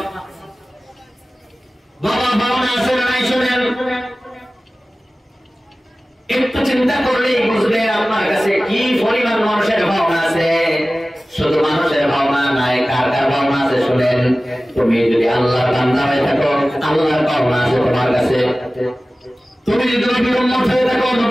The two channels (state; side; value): normal; both; correlation 0.97